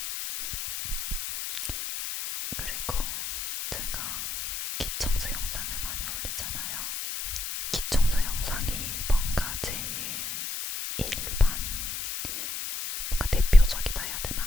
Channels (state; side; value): noise; left; hiss, 5 dB below the sound